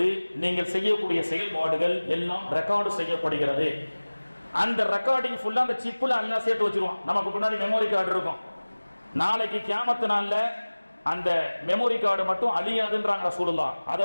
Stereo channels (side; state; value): both; inverted; correlation -1.00